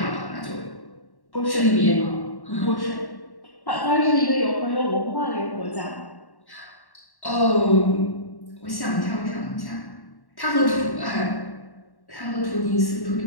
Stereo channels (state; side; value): late; right; 1.1 ms